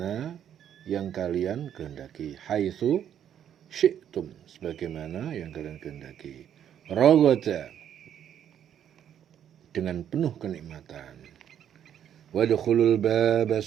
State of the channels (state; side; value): quieter; left; 9.7 dB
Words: yang kalian kehendaki. Haitsu syi'tum, sebagaimana yang kalian kehendaki. Ragada, dengan penuh kenikmatan. Wadkhulul baba